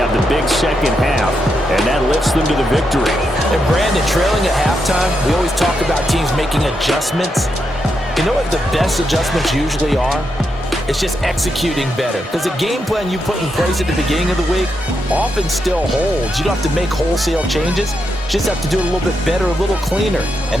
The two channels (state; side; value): normal; both; correlation 0.83